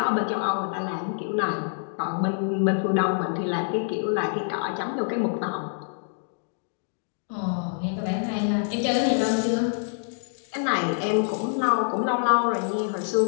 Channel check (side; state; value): right; silent; digital silence